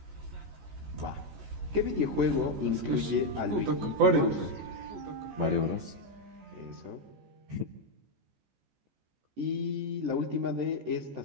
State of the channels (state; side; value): late; left; 14 ms